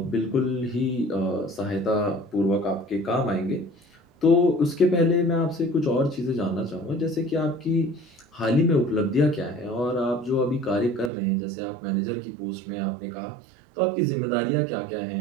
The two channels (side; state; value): left; drops out; at 11.1 s